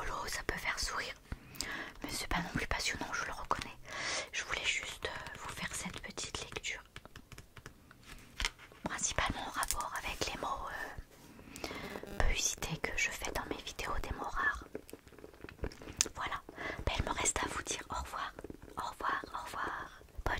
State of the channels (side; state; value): both; identical; correlation 1.00